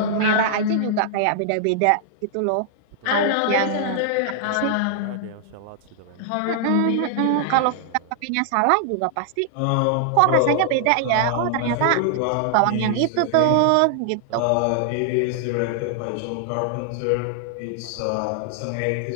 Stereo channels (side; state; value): both; different; correlation 0.00